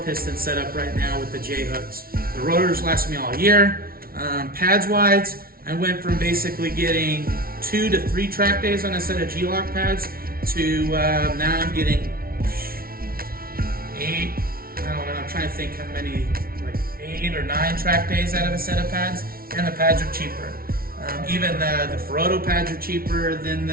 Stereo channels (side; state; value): left; late; 0.43 ms